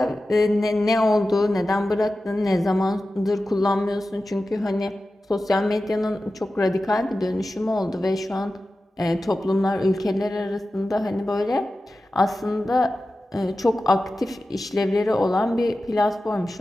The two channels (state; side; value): normal; both; correlation 0.94